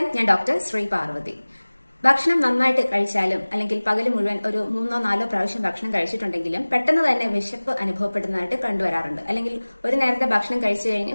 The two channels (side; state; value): both; inverted; correlation -1.00